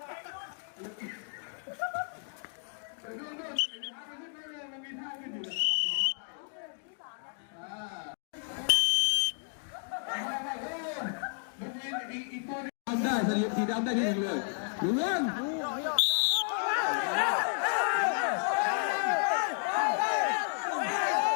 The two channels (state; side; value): silent; right; 56 dB below the other